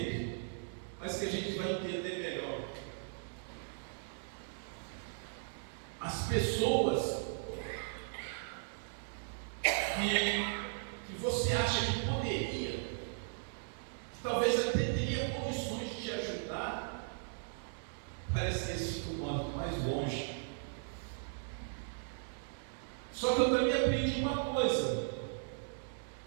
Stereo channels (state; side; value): silent; left; digital silence